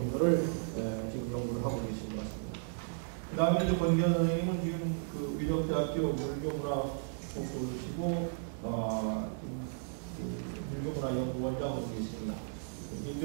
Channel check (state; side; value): silent; left; digital silence